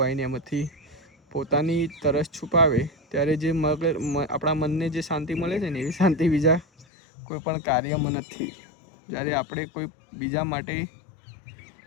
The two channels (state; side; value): drops out; right; at 6.9 s